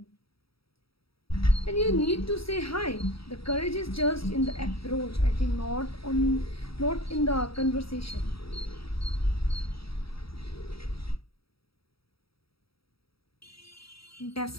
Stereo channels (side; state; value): right; late; 0.76 ms